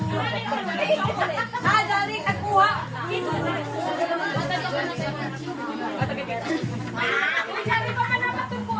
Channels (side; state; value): both; identical; correlation 1.00